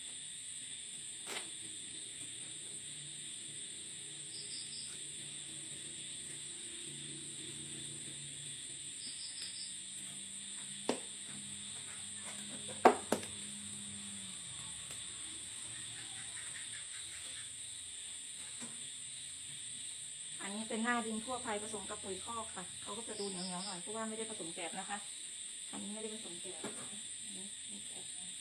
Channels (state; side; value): identical; both; correlation 1.00